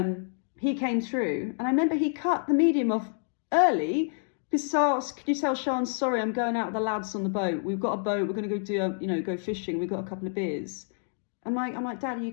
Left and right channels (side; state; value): right; silent; 59 dB below the other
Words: he came through, and I remember he cut the medium off early because I asked, could you tell Sean, sorry, I'm going out with the lads on the boat. We've got a boat. We're going to go do go fishing. We've got a couple of beers. I'm like, Dad, are you